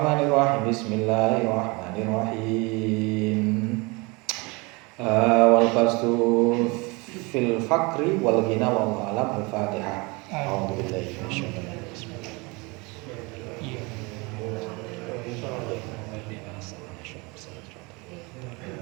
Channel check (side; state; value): left; quieter; 26.9 dB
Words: Bismillahirrahmanirrahim. Wal fastu fil fakri wal ghina wallahu alam. Al-Fatihah. A'udzu billahi minasyaitonir rajim.